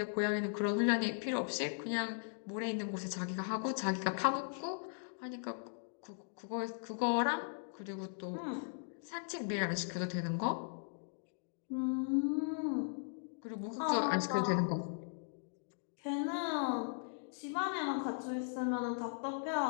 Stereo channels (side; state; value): right; silent; digital silence